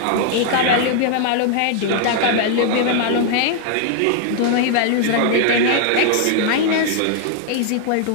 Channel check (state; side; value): different; both; correlation 0.00